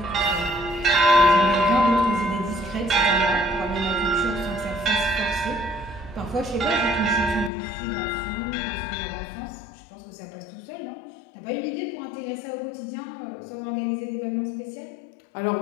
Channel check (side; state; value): right; drops out; at 7.5 s